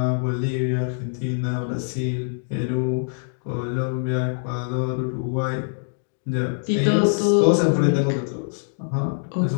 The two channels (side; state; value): right; silent; digital silence